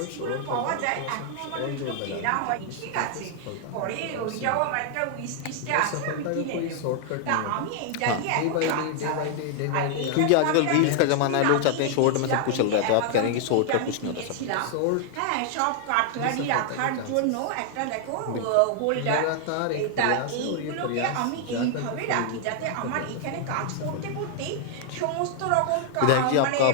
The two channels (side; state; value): both; different; correlation 0.00